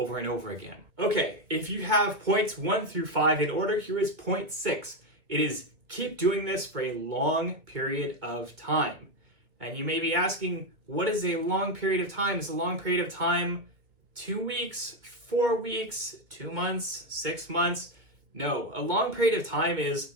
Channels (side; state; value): left; late; 2.0 ms